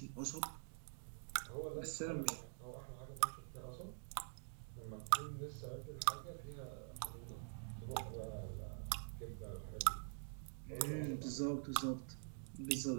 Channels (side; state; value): left; silent; digital silence